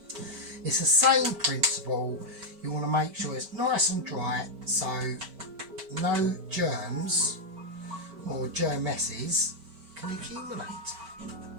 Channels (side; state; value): left; late; 5.1 ms